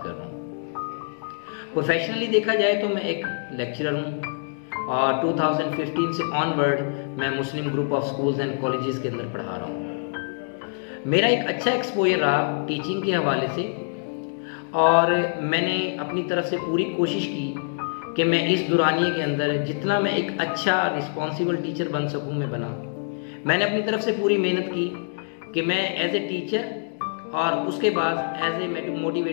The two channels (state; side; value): silent; right; digital silence